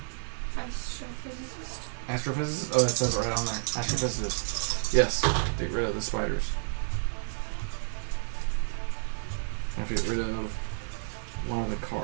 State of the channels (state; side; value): silent; left; 58 dB below the other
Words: Astrophysicist. Astrophysicist? Oh, it says it right on there. Astrophysicist. Yes. Get rid of the spiders. I have to get rid of one of the